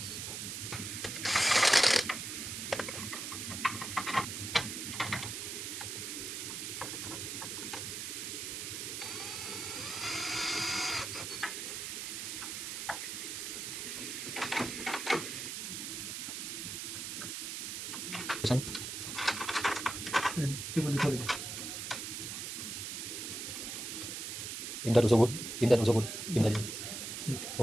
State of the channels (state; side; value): noise; right; hiss, 5 dB below the sound